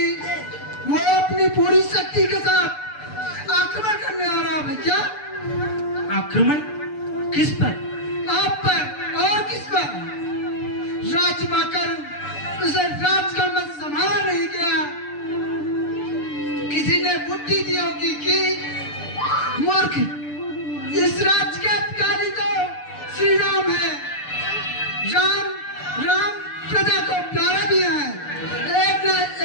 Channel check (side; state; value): right; late; 6.8 ms